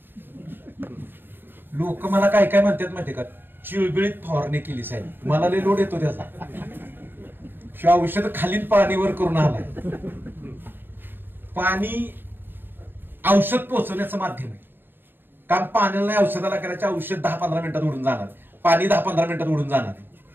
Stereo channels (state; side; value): late; left; 0.096 ms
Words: लोक मला काय काय म्हणतात माहिती का? चिळबिळीत फवारणी केली साहेब. मला लय लोड येतो त्याचा. शिवाय औषध खालील पाणीवर करून आलाय. पाणी औषध पोहोचवण्याचं माध्यम आहे. काम पाण्याला नाही औषधाला करायचं. औषध 10-15 मिनिटात उडून जाणार, पाणी 10-15 मिनिटात उडून जाणार.